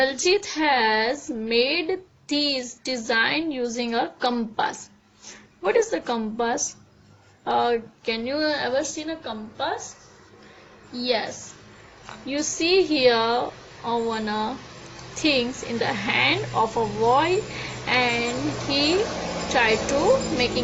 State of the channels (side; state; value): both; identical; correlation 1.00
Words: has made this design using a compass. What is the compass? Can you ever seen a compass? Yes. You see here one things in the hand of a boy, and he tried to